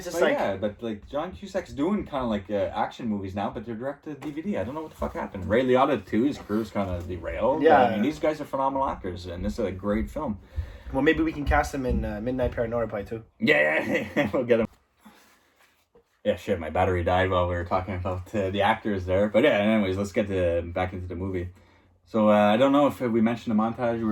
just but like John Cusack's doing kind of like action movies now, but they're direct to DVD. I don't know what the fuck happened. Ray Liotta too. His career's kind of derailed. Yeah, I mean, these guys are phenomenal actors, and this is a great film. Well, maybe we can cast him in Midnight Paranormal too. Yeah, we'll get him. Yeah, shit, my battery died while we were talking about the actors there. But yeah, anyways, let's get back into the movie. So I don't know if we mentioned the montage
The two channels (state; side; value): identical; both; correlation 1.00